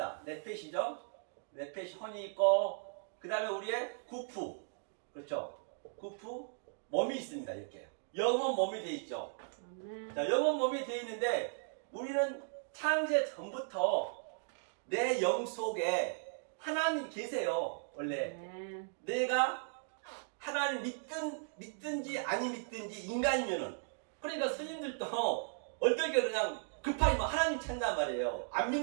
네펫이죠. 네펫이 혼이 있고, 그 다음에 우리의 구프, 그렇죠. 구프, 몸이 있습니다. 이렇게 영혼 몸이 돼 있죠. 자, 영혼 몸이 돼 있는데 우리는 창세 전부터 내 영 속에 하나님 계세요. 원래 내가 하나님 믿든지 아니 믿든지 인간이면은, 그러니까 스님들도 어떨 게 그냥 급하게 막 하나님 찾는단 말이에요. 안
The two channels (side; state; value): left; silent; digital silence